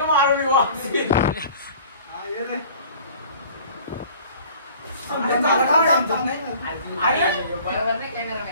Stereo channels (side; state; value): both; inverted; correlation -0.47